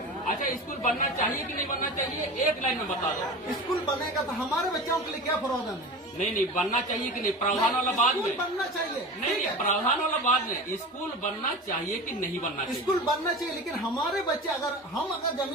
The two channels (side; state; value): both; normal; correlation 0.32